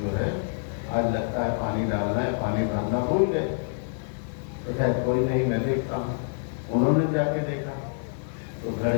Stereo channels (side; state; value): right; silent; digital silence